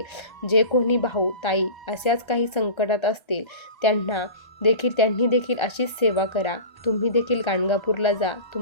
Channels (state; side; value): late; right; 1.3 ms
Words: जे कोणी भाऊ ताई अशाच काही संकटात असतील त्यांनी देखील अशीच सेवा करा. तुम्ही देखील गाणगापूरला जा,